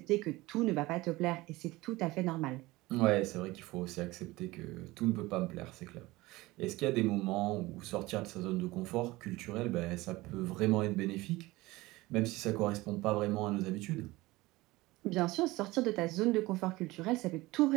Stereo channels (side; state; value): left; quieter; 20.1 dB